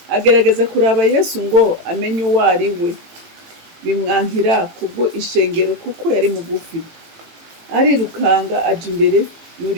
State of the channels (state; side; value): late; left; 18 ms